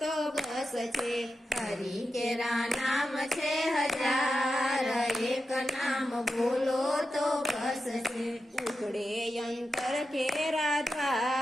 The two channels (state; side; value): normal; both; correlation 0.90